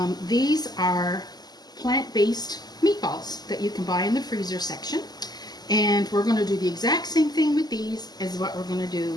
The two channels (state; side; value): late; right; 0.20 ms